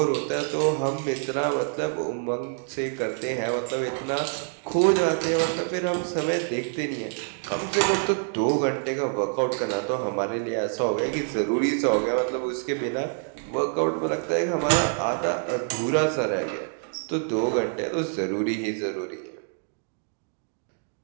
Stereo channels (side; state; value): left; silent; 61 dB below the other